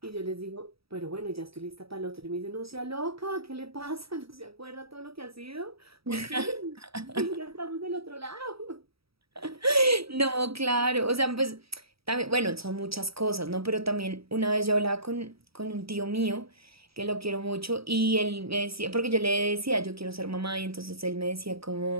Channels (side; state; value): left; late; 0.76 ms